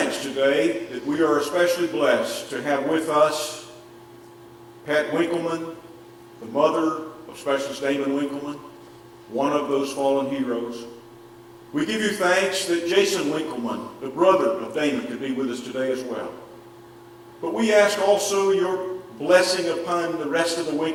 today that we are especially blessed to have with us Pat Winkleman, the mother of Specialist Damon Winkleman, one of those fallen heroes. We give you thanks that Jason Winkleman, the brother of Damon, could be with us today as well. But we ask also your blessing upon the rest of the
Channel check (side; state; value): both; identical; correlation 1.00